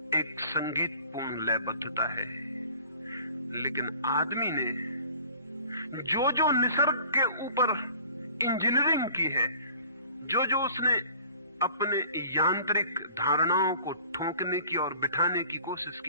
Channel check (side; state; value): both; inverted; correlation -0.49